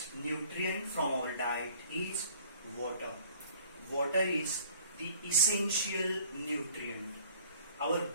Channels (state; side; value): inverted; both; correlation -0.53